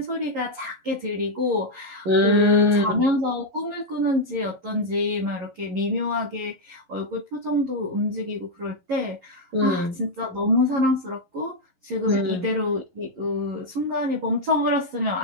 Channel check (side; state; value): left; late; 11 ms